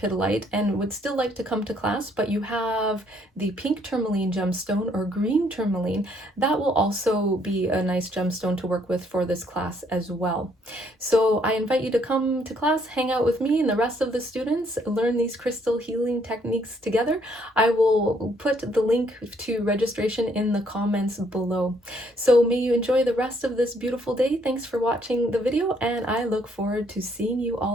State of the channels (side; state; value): both; normal; correlation 0.68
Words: and would still like to come to class, but you have the pink tourmaline gemstone or green tourmaline, that will also be a nice gemstone to work with for this class as well. So I invite you to come to class, hang out with me and the rest of the students, learn these crystal healing techniques together. I will put the link to registration in the comments below. So may you enjoy the rest of this beautiful day. Thanks for watching the video, and I look forward to seeing you